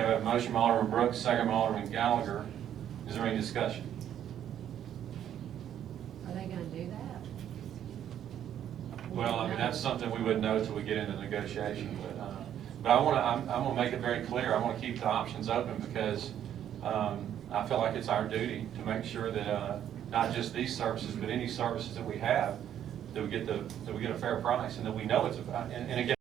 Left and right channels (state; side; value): quieter; left; 10.3 dB